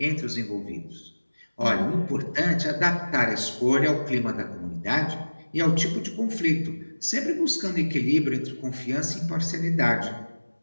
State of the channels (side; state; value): both; inverted; correlation -1.00